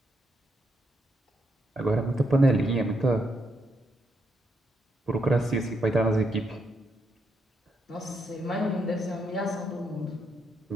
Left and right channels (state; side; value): normal; both; correlation 0.79